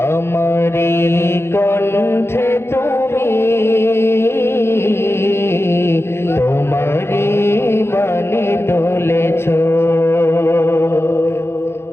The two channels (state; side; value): late; right; 0.12 ms